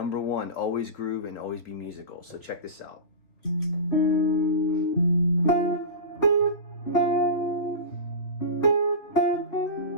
one, always groove and always be musical. So check this out.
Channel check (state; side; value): late; right; 3.7 ms